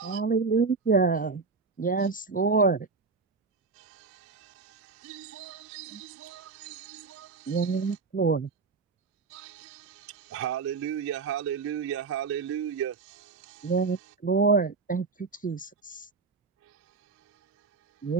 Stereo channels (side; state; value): left; quieter; 4.6 dB